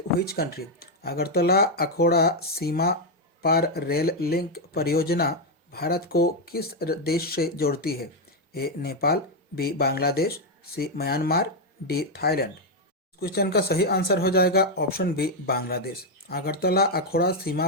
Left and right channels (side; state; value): both; normal; correlation 0.02